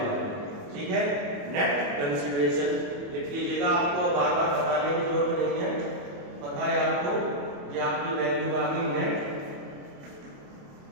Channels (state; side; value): late; left; 28 ms